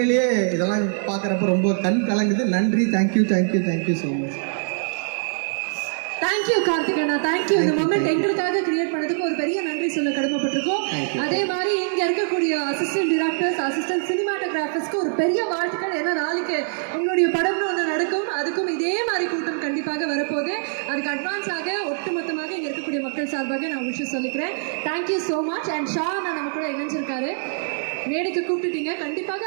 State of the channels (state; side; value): silent; left; 60 dB below the other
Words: இதெல்லாம் பார்க்குறப்ப ரொம்ப கண் கலங்குது. நன்றி, தேங்க்யூ ஸோ மச். தேங்க்யூ கார்த்திகண்ணா, தேங்க்யூ. இந்த மொமெண்ட் எங்களுக்காக கிரியேட் பண்ணதுக்கு ஒரு பெரிய நன்றி சொல்ல கடமைப்பட்டிருக்கோம். அதே மாதிரி இங்க இருக்கக்கூடிய அசிஸ்டன்ட் டிரெக்டர்ஸ், அசிஸ்டன்ட் சினிமாட்டோகிராஃபர்ஸ்க்கு ஒரு பெரிய வாழ்த்துக்கள். ஏன்னா நாளைக்கு உங்களுடைய படம்னு ஒன்று நடக்கும், அதுக்கும் இதே மாதிரி கூட்டம் கண்டிப்பாக வரப்போகுது. அதுக்கு அட்வான்ஸாக ஒட்டுமொத்தமாக இங்கே இருக்கக்கூடிய மக்கள் சார்பாக நான் விஷயம் சொல்லிக்கிறேன். Thank you so much. And Shah நான் நம்ம கூட இணைஞ்சிருக்காரு, மேடைக்கு கூப்பிட்டுட்டீங்க, கண்டிப்பாக